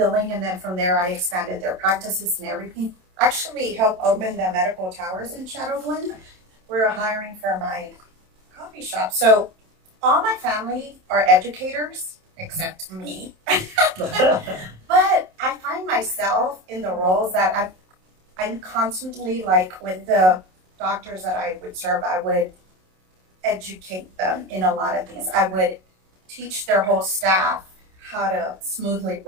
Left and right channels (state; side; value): late; left; 27 ms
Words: and then from there I expanded their practices and everything. Actually helped open the medical towers in Shadow Glen. We were hiring for my coffee shop. So all my family are educators except me. But I find myself in the roles that I'm constantly, like with the doctors that I would serve, I would educate them in a lot of things. I would teach their whole staff how to smoothly